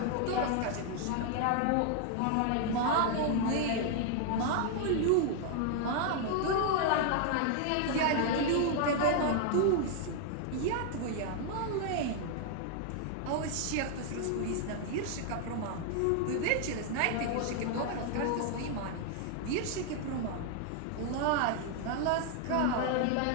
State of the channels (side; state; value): both; different; correlation 0.00